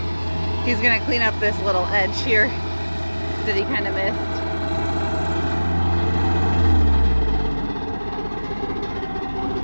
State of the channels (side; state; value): both; inverted; correlation -1.00